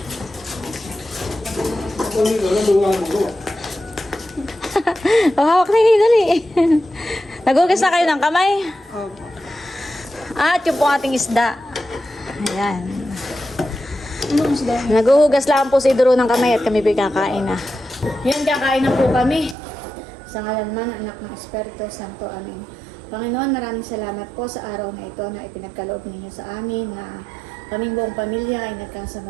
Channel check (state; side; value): drops out; left; at 19.6 s